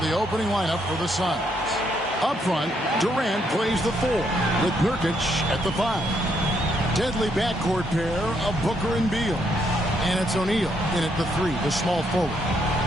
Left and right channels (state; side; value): normal; both; correlation 0.74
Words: opening lineup for the Suns. Up front, Durant plays the 4, with Nurkic at the 5. Deadly backcourt pair of Booker and Beal. And it's O'Neal in at the 3, the small forward.